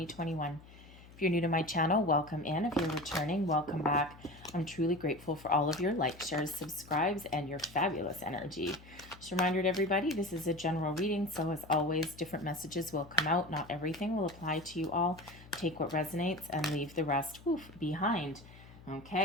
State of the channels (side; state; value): left; noise; hum, 20 dB below the sound